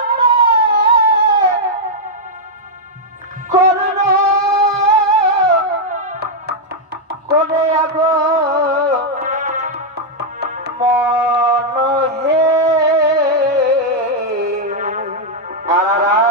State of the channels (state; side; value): normal; both; correlation -0.03